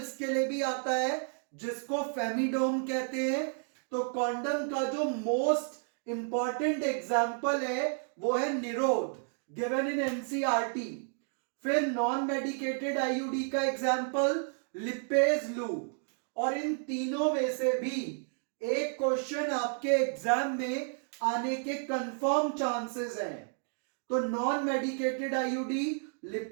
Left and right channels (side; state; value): left; silent; 57 dB below the other